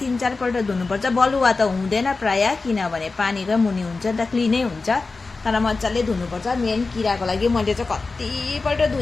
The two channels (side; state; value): right; quieter; 3.9 dB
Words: 3-4 पल्ट धुनुपर्छ। बलुवा त हुँदैन प्राय, किनभने पानीकै मुनि हुन्छ नि त, क्लिनै हुन्छ, तर मजाले धुनुपर्छ। मेन किराको लागि मैले चाहिँ कतिपल्ट